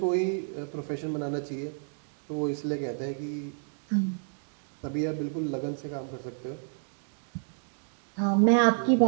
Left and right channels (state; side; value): silent; left; digital silence